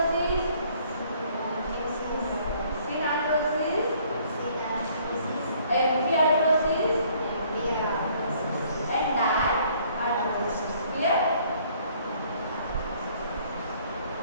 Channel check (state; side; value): inverted; both; correlation -0.61